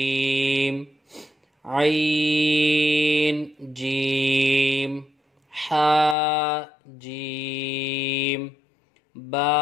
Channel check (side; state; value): right; drops out; at 6.2 s